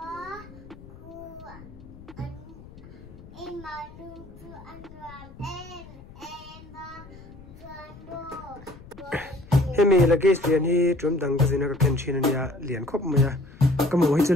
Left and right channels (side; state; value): left; noise; rumble, 19 dB below the sound